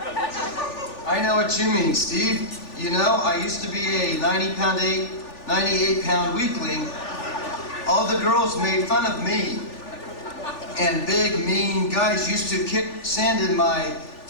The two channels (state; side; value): late; right; 3.4 ms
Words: I know what you mean, Steve. You know, I used to be a 98-pound weakling. All the girls made fun of me. And big, mean guys used to kick sand in my